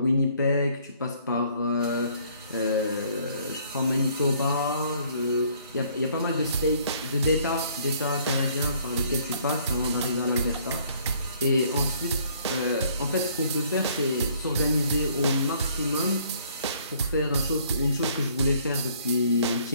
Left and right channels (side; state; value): both; inverted; correlation -0.61